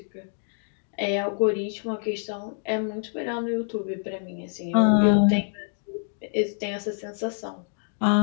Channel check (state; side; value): silent; right; 61 dB below the other